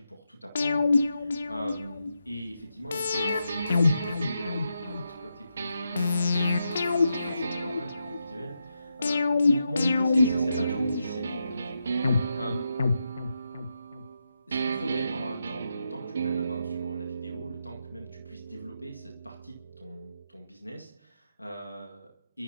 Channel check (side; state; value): both; inverted; correlation -0.85